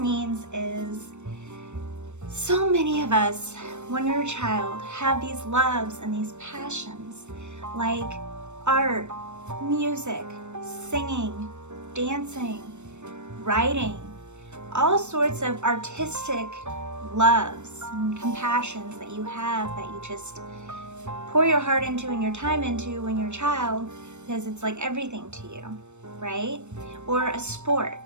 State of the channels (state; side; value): late; left; 0.83 ms